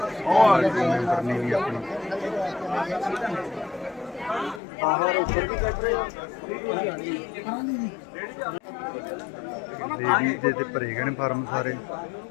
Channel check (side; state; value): right; drops out; at 4.6 s